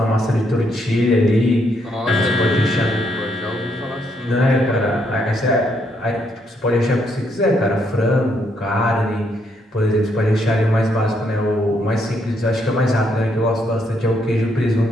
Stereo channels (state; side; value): normal; both; correlation 0.74